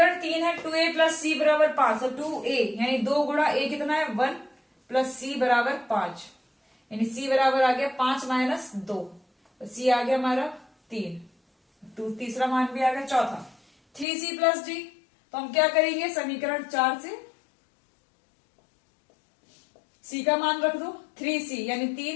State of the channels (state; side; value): drops out; right; at 14.1 s